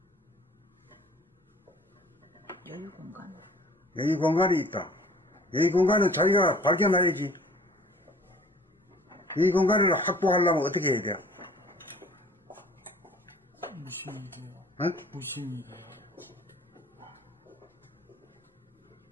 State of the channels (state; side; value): normal; both; correlation 0.50